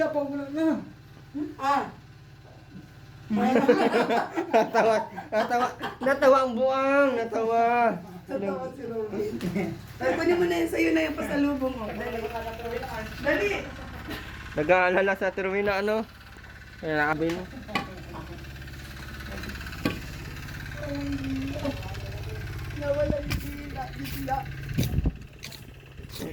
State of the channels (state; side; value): identical; both; correlation 1.00